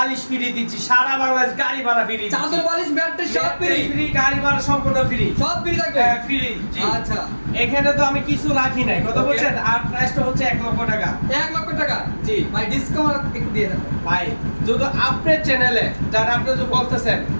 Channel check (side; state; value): both; inverted; correlation -1.00